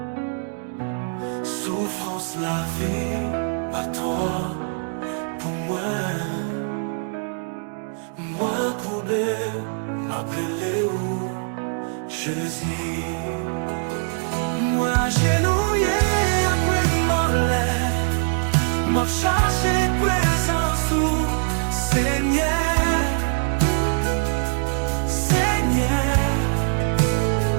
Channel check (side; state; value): left; silent; 57 dB below the other